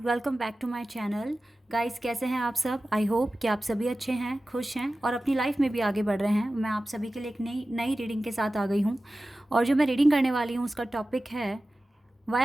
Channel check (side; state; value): both; normal; correlation 0.95